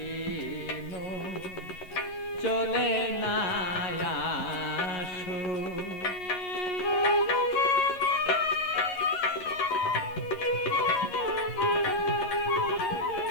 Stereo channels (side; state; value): right; late; 11 ms